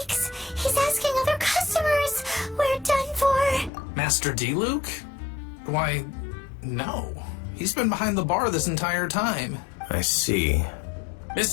he's asking other customers. We're done for. Master D-Luke? Why, no. He's been behind the bar this entire time. I see.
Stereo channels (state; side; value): drops out; right; at 3.7 s